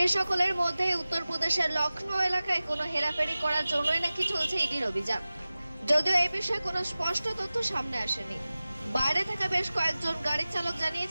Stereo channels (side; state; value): both; inverted; correlation -0.97